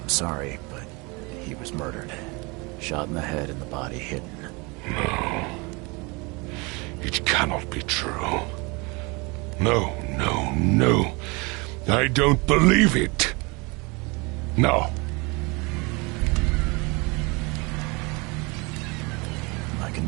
sorry, but he was murdered. Shot in the head and the body hidden. No. It cannot be true. No, no, no. I don't believe it. No. My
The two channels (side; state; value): left; quieter; 27.7 dB